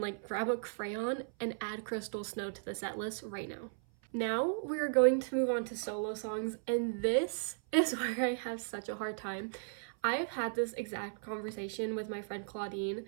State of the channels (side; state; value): left; silent; 54 dB below the other